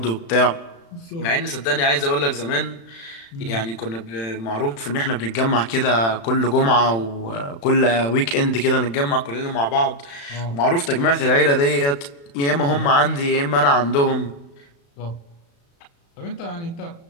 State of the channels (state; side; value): late; right; 35 ms